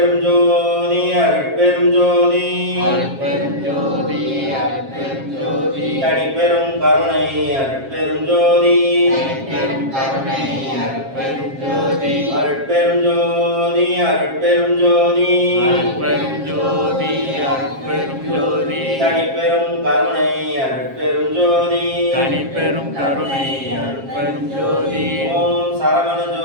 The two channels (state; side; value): late; left; 7.4 ms